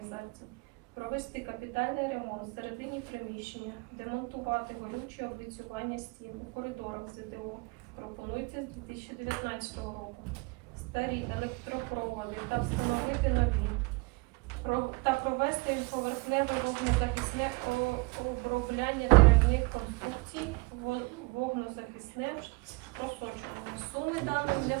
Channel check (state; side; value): quieter; left; 27.4 dB